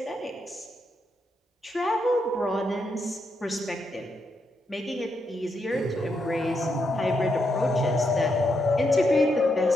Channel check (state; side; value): normal; both; correlation 0.81